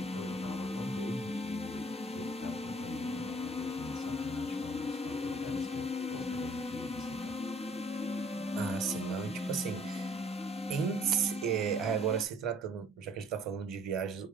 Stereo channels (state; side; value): normal; both; correlation 0.57